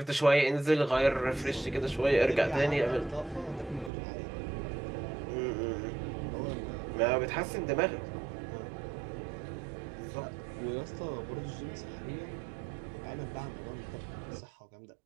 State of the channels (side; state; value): left; drops out; at 3.9 s